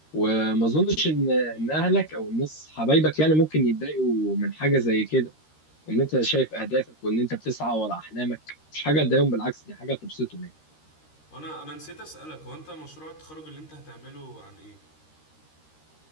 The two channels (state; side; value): late; right; 13 ms